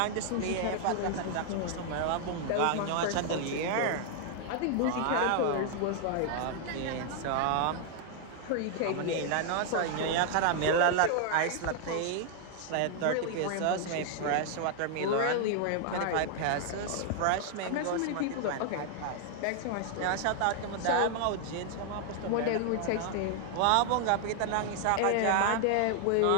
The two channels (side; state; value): both; different; correlation 0.00